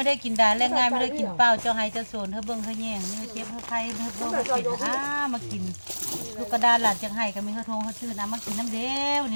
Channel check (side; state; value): both; inverted; correlation -1.00